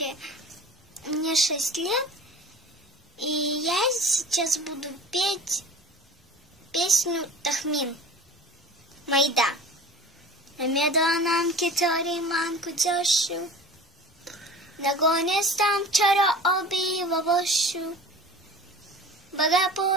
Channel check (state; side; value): normal; both; correlation 0.39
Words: мне 6 лет, и я сейчас буду петь песню Тахмин Майда. Намедонам китори манку джошу, нагонестам чара оби вавошу,